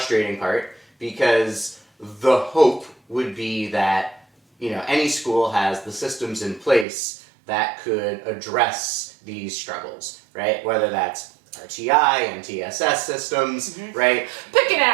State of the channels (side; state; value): left; drops out; at 6.9 s